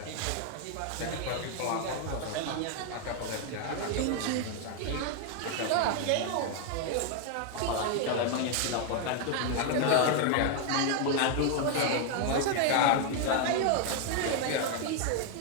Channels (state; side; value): different; both; correlation 0.00